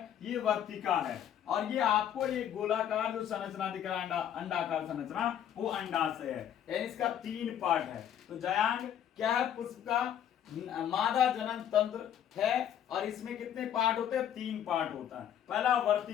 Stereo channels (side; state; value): right; quieter; 10.0 dB